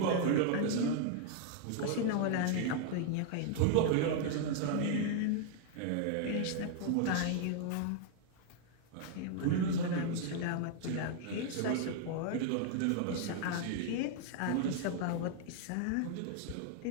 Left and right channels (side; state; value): both; different; correlation -0.01